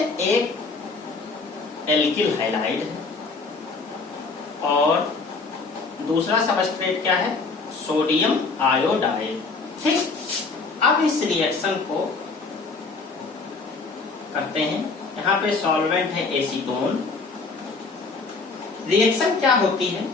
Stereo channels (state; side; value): quieter; right; 4.1 dB